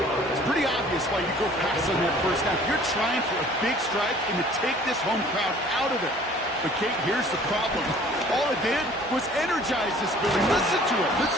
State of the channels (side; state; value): both; normal; correlation 0.52